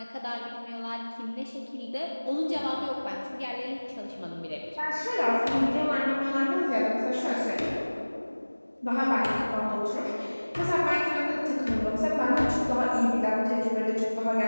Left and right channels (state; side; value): inverted; both; correlation -1.00